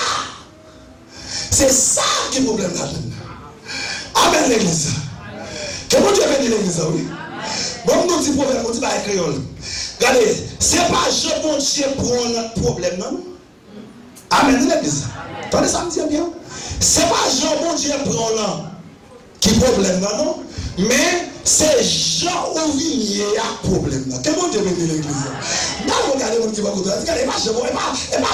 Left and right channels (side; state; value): both; identical; correlation 1.00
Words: C'est ça qui est le problème là. Amen, l'église. Que mon Dieu bénisse l'église, oui. Bon, nous dit problème, on dit pas créole. Regardez, c'est pas je, mon Dieu, prend notre problème, non? Amen, l'église. Attendez, ça me dit bien. C'est pas Jean, mon Dieu, prend là qui problème là, non? Mais c'est Jean où il y a problème là. Quel mon Dieu bénit l'église? Là, regardez mon Dieu, regardez, pas Jean, et pas